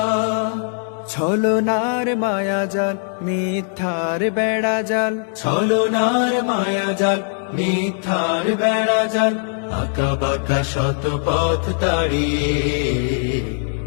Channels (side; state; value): right; silent; digital silence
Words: ছলনার মায়াজাল, মিথ্যার বেড়াজাল, ছলনার মায়াজাল, মিথ্যার বেড়া জাল আঁকা বাঁকা শত পথ তাড়িয়ে